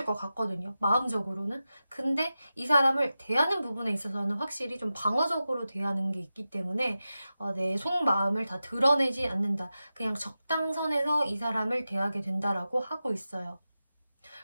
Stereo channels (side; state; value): both; inverted; correlation -0.93